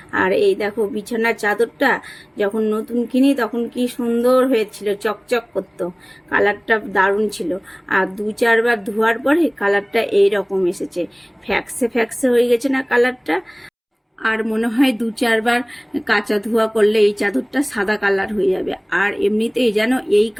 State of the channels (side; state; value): both; identical; correlation 1.00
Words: আর এই দেখো, বিছানার চাদরটা যখন নতুন কিনি তখন কি সুন্দর হয়েছিল, চকচক করতো, কালারটা দারুণ ছিল। আর 2-4 বার ধোয়ার পরে কালারটা এই রকম এসেছে, ফ্যাক্সে ফ্যাক্সে হয়ে গেছে না কালারটা। আর মনে হয় 2-4 বার কাঁচা ধোয়া করলে এই চাদরটা সাদা কালার হয়ে যাবে। আর এমনিতেই যেন এই